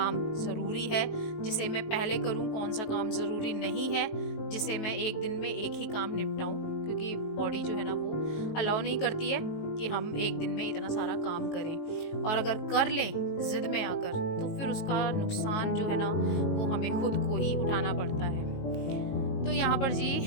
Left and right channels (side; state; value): right; late; 19 ms